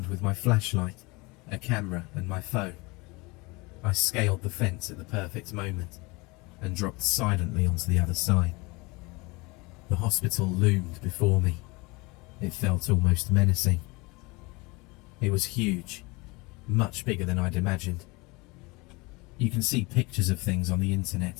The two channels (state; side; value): quieter; right; 25.4 dB